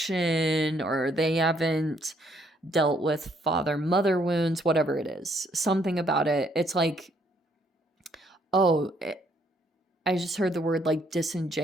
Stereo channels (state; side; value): normal; both; correlation 0.68